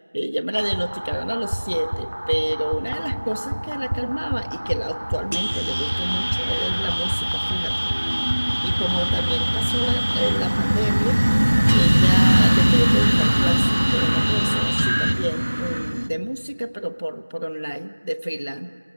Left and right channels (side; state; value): both; inverted; correlation -1.00